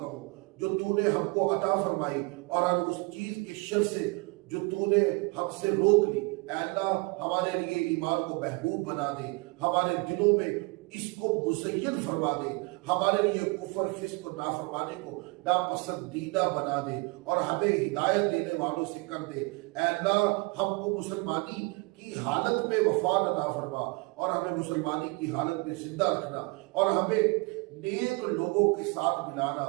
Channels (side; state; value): left; quieter; 28.1 dB